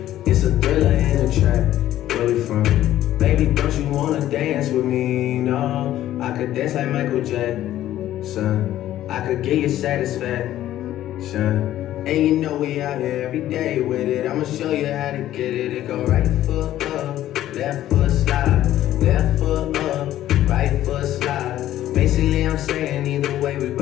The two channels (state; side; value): quieter; right; 13.1 dB